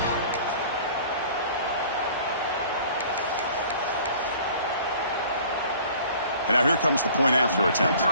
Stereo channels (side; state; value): both; inverted; correlation -0.49